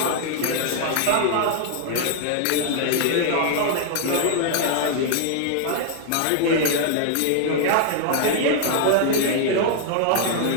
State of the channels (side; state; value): both; different; correlation 0.00